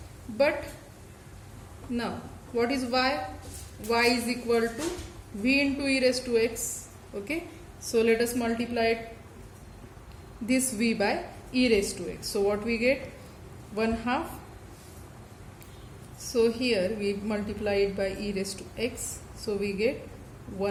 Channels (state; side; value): identical; both; correlation 1.00